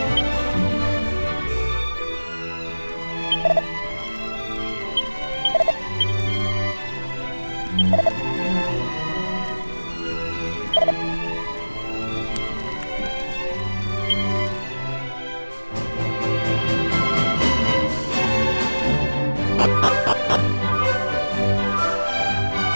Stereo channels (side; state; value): both; inverted; correlation -1.00